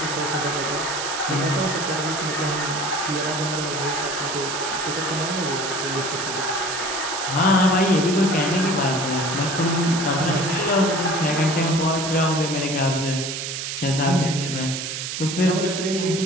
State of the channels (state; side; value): noise; right; hiss, 4 dB below the sound